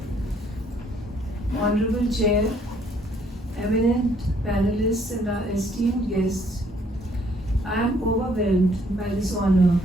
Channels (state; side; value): normal; both; correlation 0.64